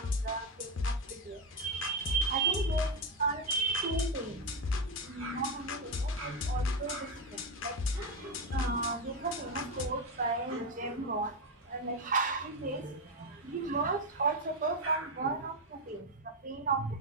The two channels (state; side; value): normal; both; correlation 0.09